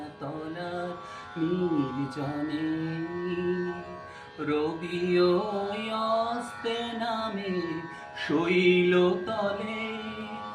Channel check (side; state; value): both; identical; correlation 1.00